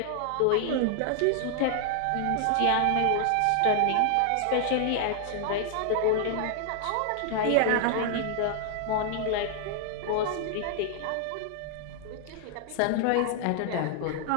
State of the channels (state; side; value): different; both; correlation 0.00